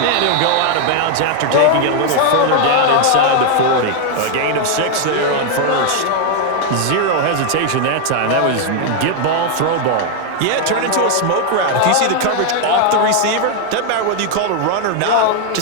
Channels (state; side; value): different; both; correlation 0.00